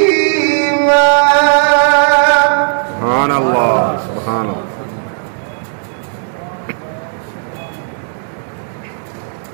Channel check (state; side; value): silent; left; digital silence